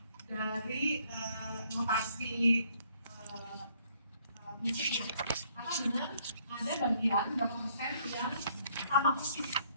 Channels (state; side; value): inverted; both; correlation -0.66